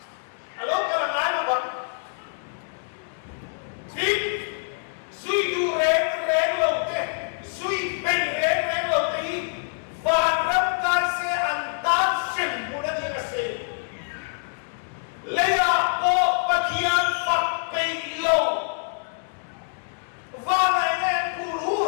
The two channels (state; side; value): silent; right; digital silence